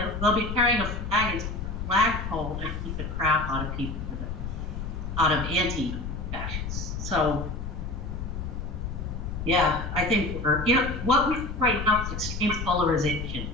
be carrying a flag into a flagpole and keep the crap out of people, out of anti-fascists. So, yeah, I think what we see right now is extreme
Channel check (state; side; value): noise; left; rumble, 5 dB below the sound